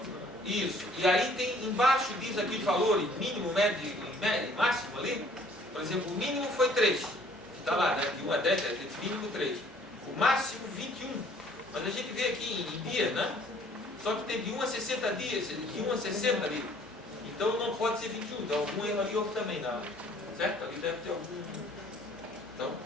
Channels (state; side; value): normal; both; correlation 0.58